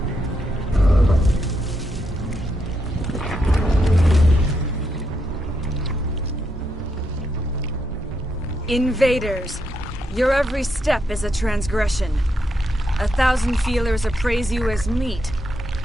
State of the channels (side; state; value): both; normal; correlation 0.81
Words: Invaders, your every step is a transgression. 1,000 feelers appraise you as meat,